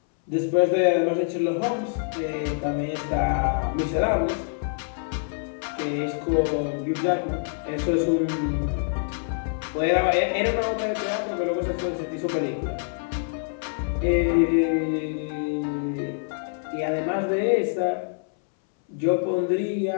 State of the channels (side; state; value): right; silent; 61 dB below the other